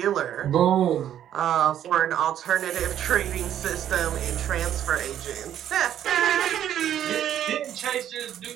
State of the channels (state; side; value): quieter; left; 10.7 dB